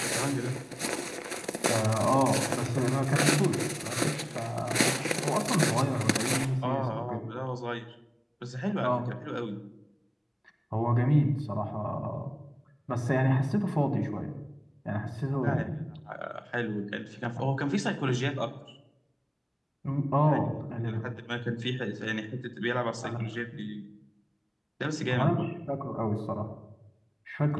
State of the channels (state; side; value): identical; both; correlation 1.00